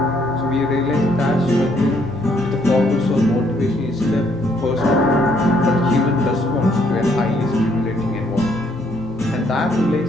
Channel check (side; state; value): both; normal; correlation 0.69